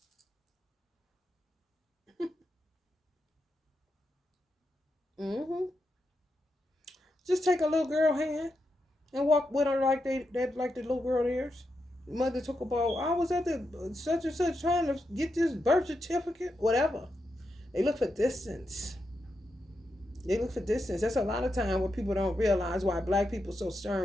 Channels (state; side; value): normal; both; correlation 0.86